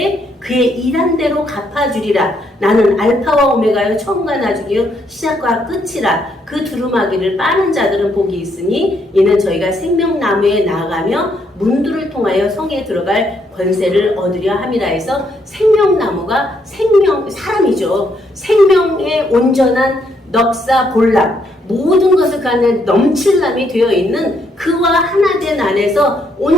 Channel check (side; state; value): both; normal; correlation 0.74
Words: 그의 일한 대로 갚아주리라. 나는 알파와 오메가여 처음과 나중이요 시작과 끝이라. 그 두루마기를 빠는 자들은 복이 있으니 이는 저희가 생명나무에 나아가며 문들을 통하여 성에 들어갈 권세를 얻으려 함이라 해서 생명나무가 사람이죠. 생명의 온전한 넉사 볼람 모든 것을 그 안에 넘칠람이 되어 있는 그와 하나 된 안에서